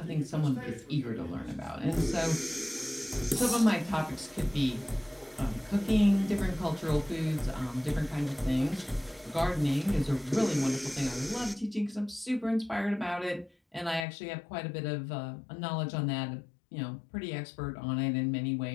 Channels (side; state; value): right; drops out; at 14.1 s